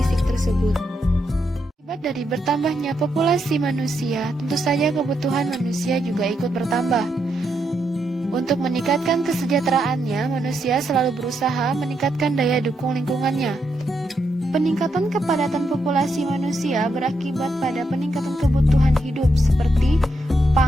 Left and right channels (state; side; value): normal; both; correlation 0.81